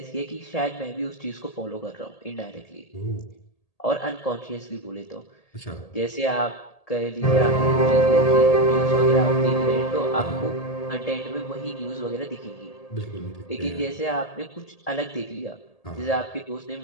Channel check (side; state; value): right; late; 1.8 ms